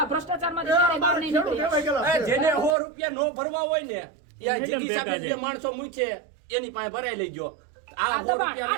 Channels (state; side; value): drops out; left; at 2.8 s